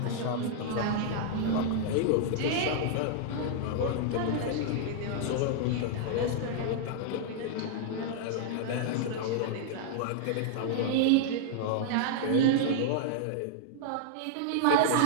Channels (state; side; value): different; both; correlation -0.01